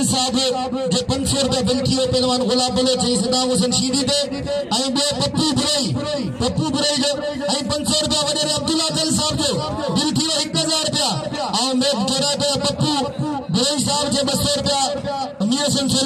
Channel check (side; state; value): both; identical; correlation 1.00